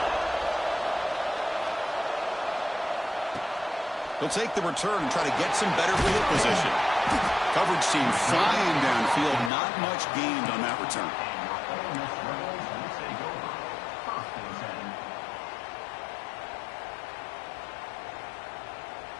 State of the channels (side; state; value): right; drops out; at 9.5 s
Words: He'll take the return and try to get some better field position. Coverage team flying downfield. Not much gained on that return.